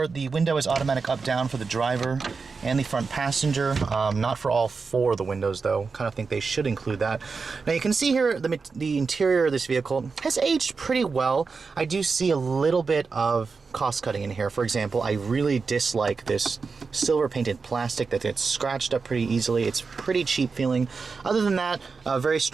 the window is automatic up-down for the driver and the front passenger. Not for all 4 of the windows though. Kind of think they should include that. Now you can see here the interior of this vehicle has aged pretty well. I do see a little bit of cost cutting in here. For example, I really dislike this silver painted plastic that gets scratched up pretty easily. It's pretty cheap feeling. Other than that, very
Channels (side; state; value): left; quieter; 4.8 dB